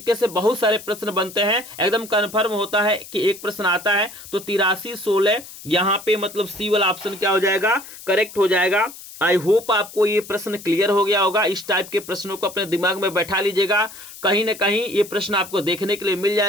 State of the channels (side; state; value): left; noise; hiss, 16 dB below the sound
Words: से बहुत सारे प्रश्न बनते हैं। एकदम कंफर्म होता है कि एक प्रश्न आता है तो 8316 यहाँ पे मतलब सी वाला ऑप्शन क्या हो जाएगा करेक्ट हो जाएगा। आई होप आपको ये प्रश्न क्लियर हो गया होगा। इस टाइप के प्रश्नों को अपने दिमाग में बैठा लीजिएगा, कहीं ना कहीं ये प्रश्न आपको देखने के लिए मिल